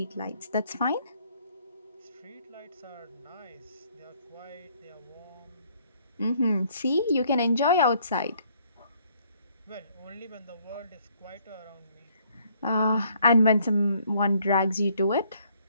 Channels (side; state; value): both; inverted; correlation -0.65